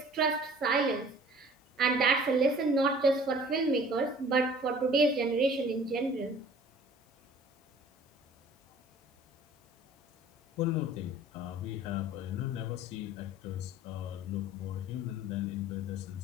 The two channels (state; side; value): normal; both; correlation 0.49